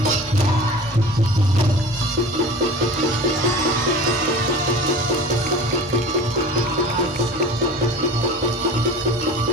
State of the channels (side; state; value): both; normal; correlation 0.38